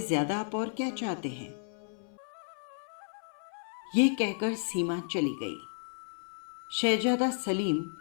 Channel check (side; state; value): right; silent; 56 dB below the other